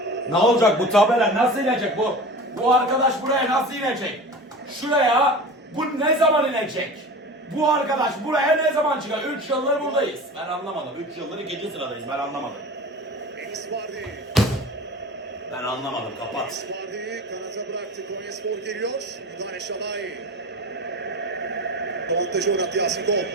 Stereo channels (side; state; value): both; normal; correlation 0.34